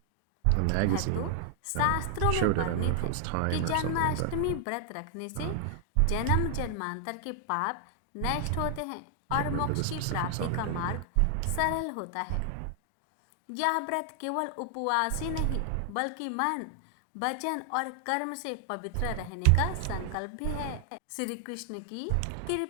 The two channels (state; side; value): different; both; correlation 0.00